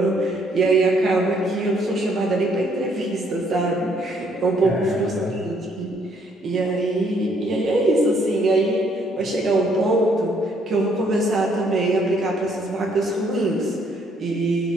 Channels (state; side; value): normal; both; correlation 0.68